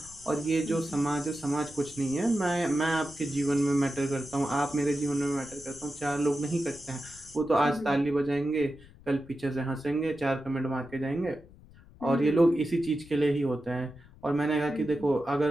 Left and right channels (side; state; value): left; noise; rumble, 22 dB below the sound